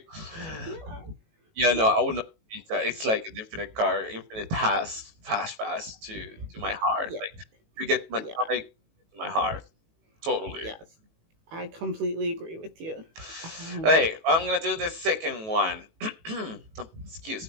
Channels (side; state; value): left; late; 18 ms